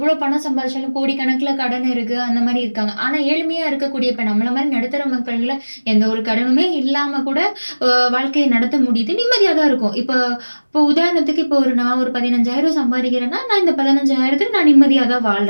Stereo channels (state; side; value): inverted; both; correlation -1.00